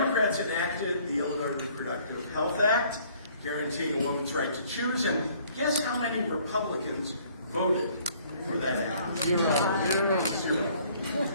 enacted the Illinois Reproductive Health Act, guaranteeing a woman's right to choose, and guess how many Republicans voted for that act? Zero.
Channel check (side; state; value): both; inverted; correlation -0.59